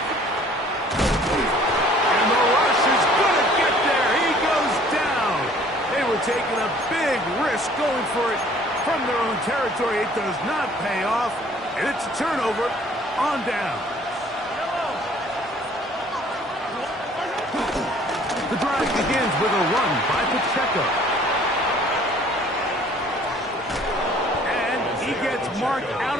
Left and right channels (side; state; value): both; normal; correlation 0.55